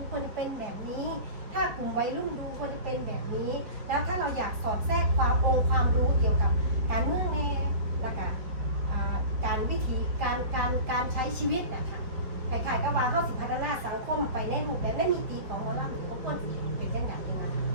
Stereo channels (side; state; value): left; late; 4.8 ms